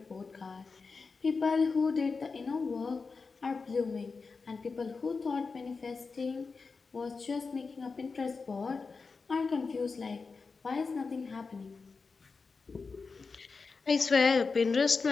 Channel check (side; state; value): right; quieter; 4.6 dB